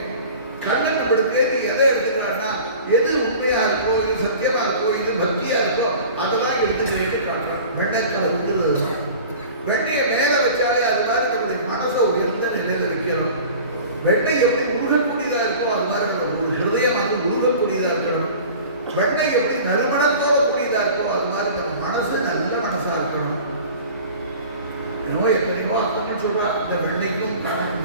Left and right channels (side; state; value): both; inverted; correlation -0.41